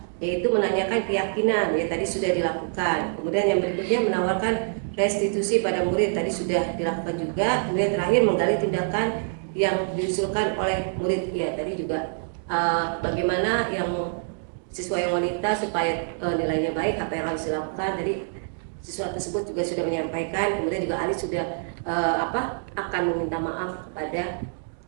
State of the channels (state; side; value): silent; left; digital silence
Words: yaitu menanyakan keyakinan, ya tadi sudah dilakukan. Kemudian yang berikutnya menawarkan restitusi pada murid, tadi sudah dilakukan juga. Kemudian terakhir menggali tindakan yang diusulkan oleh murid, ya tadi juga bagaimana yang siswa yang wanita supaya nilainya baik, apa yang harus dilakukan. Tadi siswa tersebut juga sudah menyampaikan. Kemudian juga Ali sudah akan meminta maaf kepada